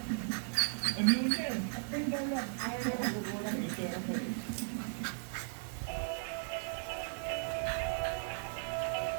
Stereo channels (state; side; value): silent; left; digital silence